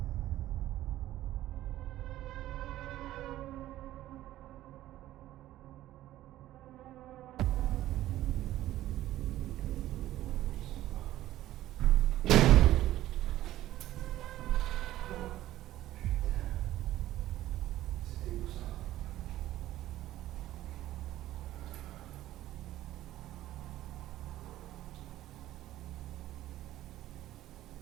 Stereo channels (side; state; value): left; quieter; 14.4 dB